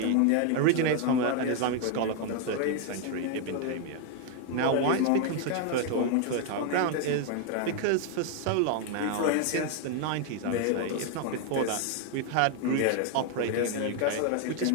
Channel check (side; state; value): both; different; correlation 0.00